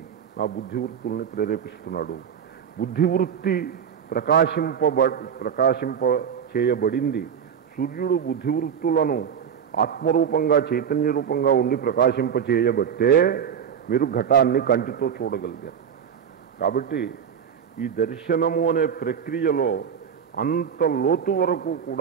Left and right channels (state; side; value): quieter; left; 7.8 dB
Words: నా బుద్ధివృత్తుల్ని ప్రేరేపిస్తున్నాడు. బుద్ధివృత్తి ప్రకాశింప చేయబడింది. సూర్యుడు బుద్ధివృత్తులను ఆత్మరూపంగా, చైతన్య రూపంగా ఉండి ప్రకాశింప చేయబట్టే మీరు ఘటాన్ని కంటితో చూడగలిగారు. కాబట్టి ఈ దర్శనము అనే ప్రక్రియలో అంత లోతు వరకు